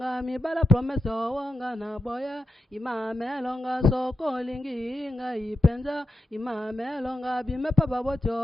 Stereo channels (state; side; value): normal; both; correlation 0.88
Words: mibala promese owonga na boye imamelonga soko lingi inga ipenza imamelonga bimepa baboti